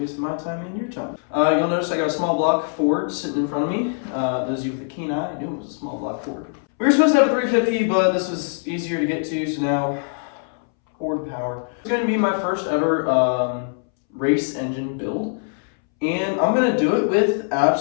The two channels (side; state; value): right; silent; 64 dB below the other